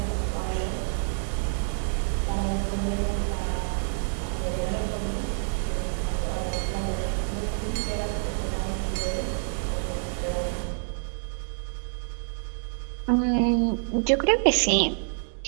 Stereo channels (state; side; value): silent; left; digital silence